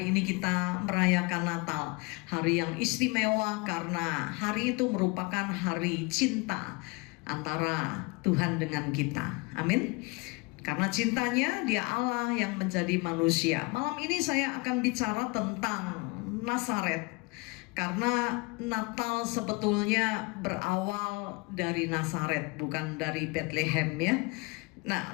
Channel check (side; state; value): right; quieter; 27.0 dB